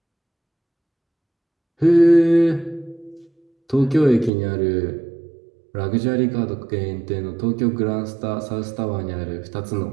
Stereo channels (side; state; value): left; drops out; at 4.3 s